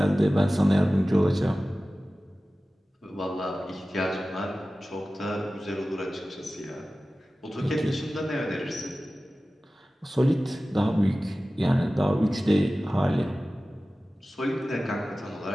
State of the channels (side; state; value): both; normal; correlation 0.96